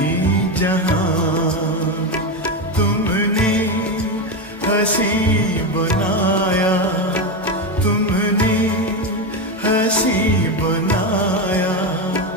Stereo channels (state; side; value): normal; both; correlation 0.13